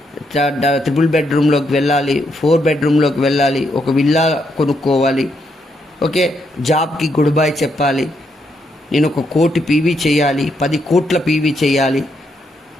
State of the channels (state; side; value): normal; both; correlation 0.78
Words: 3 బెడ్రూమ్లోకి వెళ్ళాలి, 4 బెడ్రూమ్లోకి వెళ్ళాలి, ఒక విల్లా కొనుక్కోవాలి, ఓకే, జాబ్కి గుడ్ బై చెప్పాలి, నేను 1 కోటి పీవీ చేయాలి, 10 కోట్ల పీవీ చేయాలి